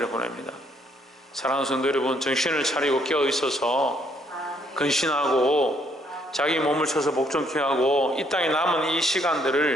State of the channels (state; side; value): normal; both; correlation 0.68